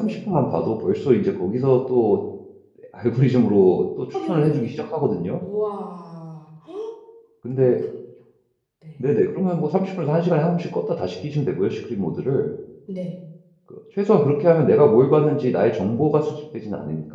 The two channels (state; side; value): identical; both; correlation 1.00